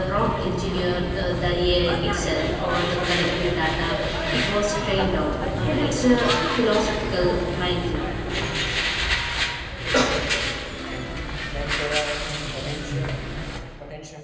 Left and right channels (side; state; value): both; identical; correlation 1.00